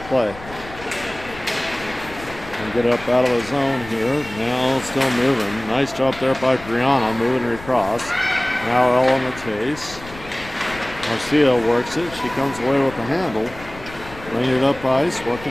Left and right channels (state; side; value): noise; left; rumble, 16 dB below the sound